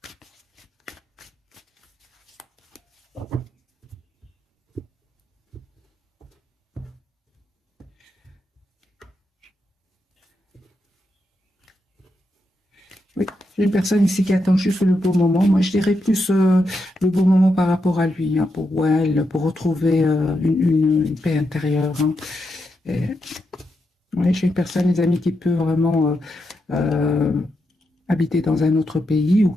Oui, j'ai une personne ici qui attend juste le bon moment. Moi, je dirais plus le bon moment par rapport à lui, hein, pour elle, pour retrouver une paix intérieure, hein. Oui, j'ai une personne, les amis, qui peut vraiment habiter dans un autre pays ou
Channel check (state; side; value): normal; both; correlation 0.84